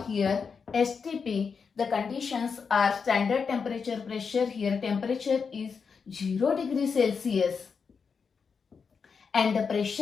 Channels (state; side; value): quieter; right; 5.7 dB